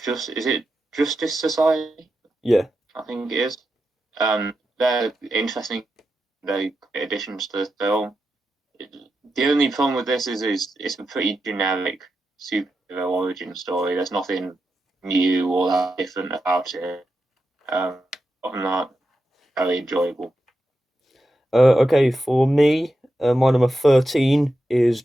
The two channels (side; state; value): both; normal; correlation 0.89